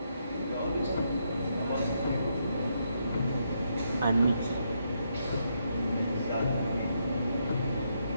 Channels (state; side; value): inverted; both; correlation -0.78